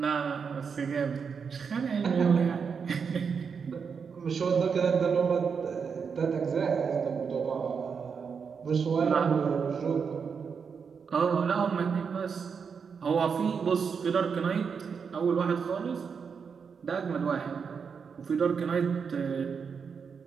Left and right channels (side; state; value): left; quieter; 6.1 dB